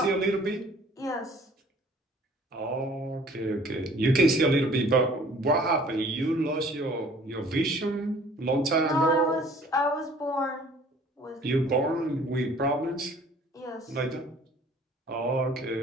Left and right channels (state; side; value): normal; both; correlation 0.53